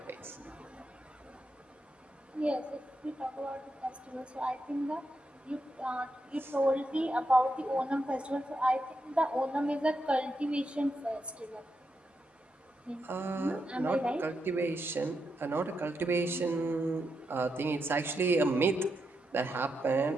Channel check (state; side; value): normal; both; correlation 0.84